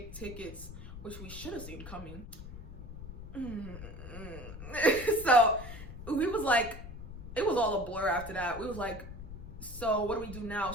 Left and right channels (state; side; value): noise; left; rumble, 11 dB below the sound